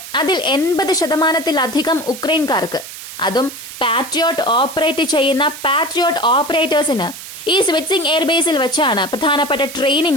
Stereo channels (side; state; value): right; noise; hiss, 12 dB below the sound